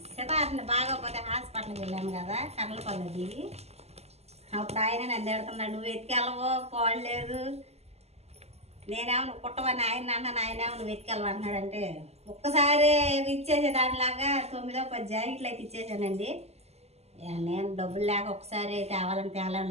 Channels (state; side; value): late; left; 0.30 ms